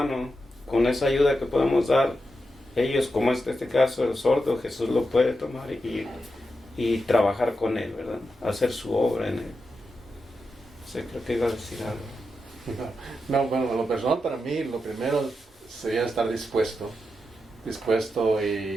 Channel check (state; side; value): normal; both; correlation 0.88